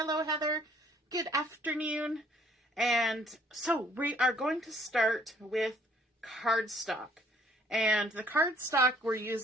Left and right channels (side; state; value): both; normal; correlation 0.61